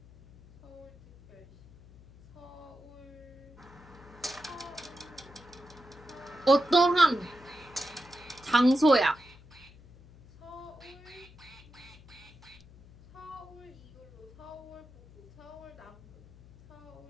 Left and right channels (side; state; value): left; noise; hum, 22 dB below the sound